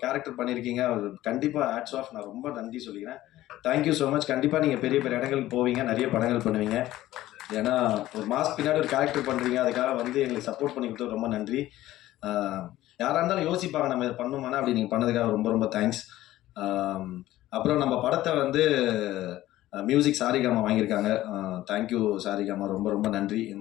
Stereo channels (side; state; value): right; quieter; 15.2 dB